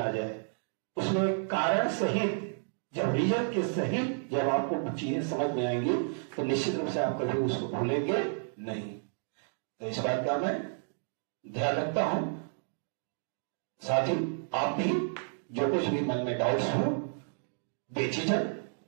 जाए, उसमें कारण सहित, जब रीजन के सहित जब आपको चीजें समझ में आएंगी तो निश्चित रूप से आप कभी उसको भूलेंगे नहीं। तो इस बात का मैं ध्यान रखता हूं। साथ ही आप भी जो कुछ भी मन में डाउट्स हो बेझिझक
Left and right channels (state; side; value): silent; left; digital silence